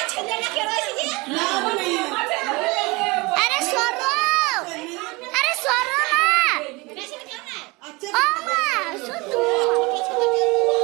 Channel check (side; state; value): left; quieter; 24.8 dB